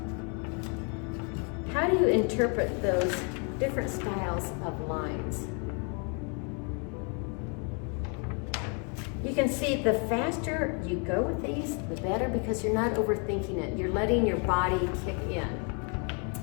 How do you interpret those different styles of lines? You can see the faster you go with these, the better, because you're not overthinking it. You're letting your body kick in.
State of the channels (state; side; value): quieter; right; 37.1 dB